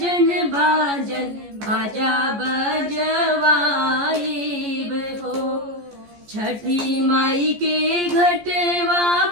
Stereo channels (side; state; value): left; late; 14 ms